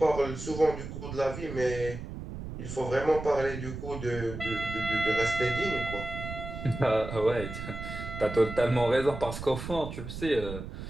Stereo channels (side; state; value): right; noise; rumble, 8 dB below the sound